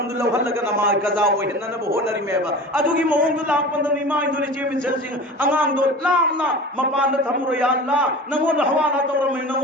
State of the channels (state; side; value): normal; both; correlation 0.35